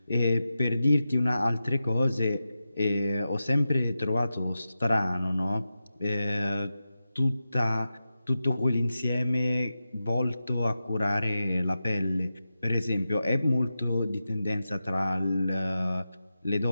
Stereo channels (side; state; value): both; inverted; correlation -0.92